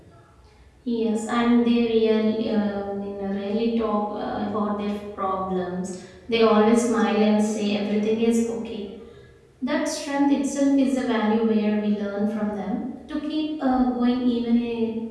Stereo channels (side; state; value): both; identical; correlation 1.00